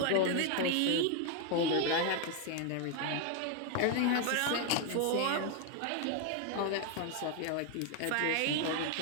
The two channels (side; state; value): both; different; correlation 0.01